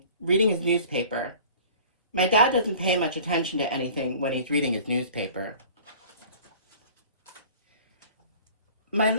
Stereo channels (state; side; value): inverted; both; correlation -0.46